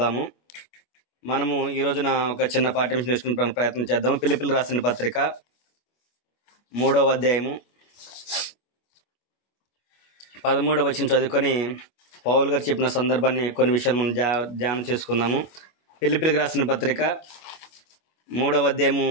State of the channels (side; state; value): right; late; 25 ms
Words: మనము ఈ రోజున ఒక చిన్న పాఠ్యాంశం నేర్చుకునే ప్రయత్నం చేద్దాము. ఫిలిప్పీయులకు రాసిన పత్రిక 3వ అధ్యాయము 13వ వచనం చదువుకొని పౌలు గారు చెప్పిన సందర్భాన్ని కొన్ని విషయాలు మనం ధ్యానం చేసుకుందాము. ఫిలిప్పీయులకు రాసిన పత్రిక 3వ అధ్యాయము